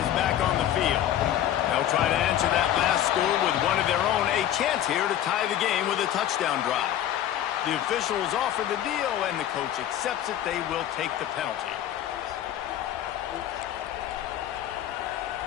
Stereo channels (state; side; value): quieter; right; 11.5 dB